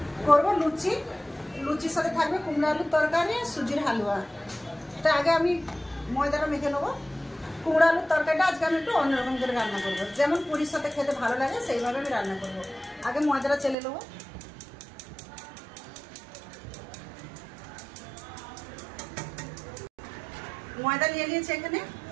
করবো লুচি। লুচির সাথে থাকবে কুমড়ো আলুর তরকারি, সুজির হালুয়া। তা আগে আমি ময়দাটা মেখে নেবো। কুমড়ো আলুর তরকারিটা আজকে আমি একটু অন্যরকম করে রান্না করবো, যেমন পুরীর সাথে খেতে ভালো লাগে সেইভাবে আমি রান্না করবো। আগে ময়দাটা চেলে নেবো। ময়দা নিয়ে নিয়েছি, এখানে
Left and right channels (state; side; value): drops out; left; at 13.8 s